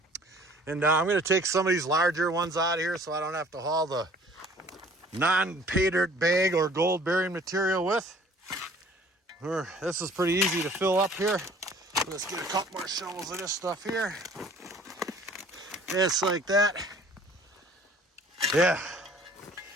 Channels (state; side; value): normal; both; correlation 0.53